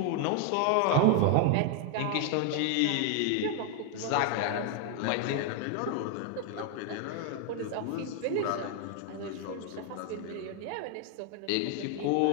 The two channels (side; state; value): both; different; correlation 0.01